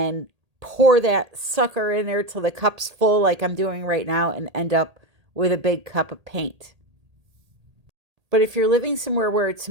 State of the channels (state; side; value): late; left; 1.8 ms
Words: pour that sucker in there till the cup's full like I'm doing right now and end up with a big cup of paint. But if you're living somewhere where it's